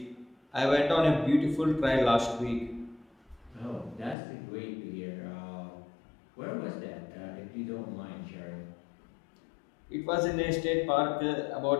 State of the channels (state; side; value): drops out; right; at 4.2 s